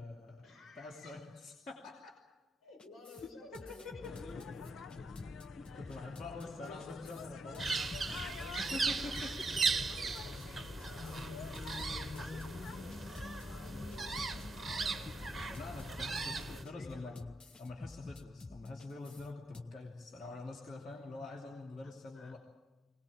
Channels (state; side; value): normal; both; correlation 0.81